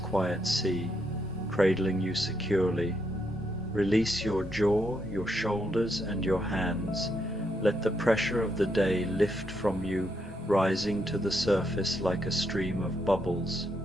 sea, cradling you securely. Release your jaw, your shoulders, and your hands. Let the pressure of the day lift from you, rising to the surface like a stream of bubbles.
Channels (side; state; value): both; normal; correlation 0.78